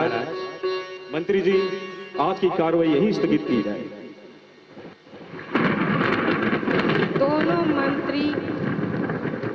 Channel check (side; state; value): both; identical; correlation 1.00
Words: मंत्री जी, आज की कार्रवाई यही स्थगित की जाए। दोनों मंत्री,